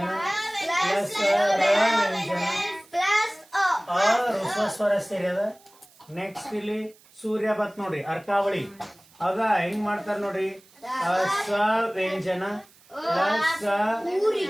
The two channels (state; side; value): noise; right; hiss, 28 dB below the sound